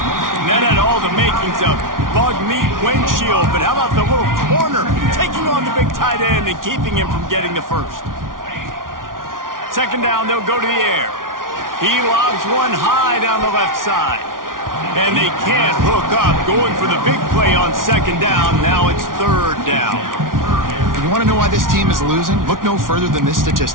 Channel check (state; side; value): late; left; 0.90 ms